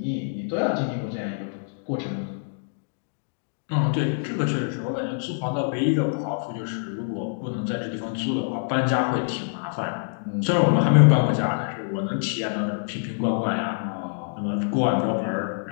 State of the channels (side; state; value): right; silent; digital silence